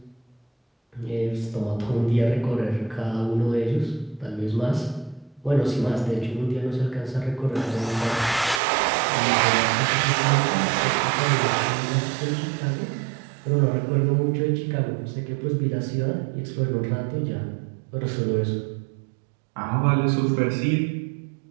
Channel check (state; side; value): drops out; left; at 8.6 s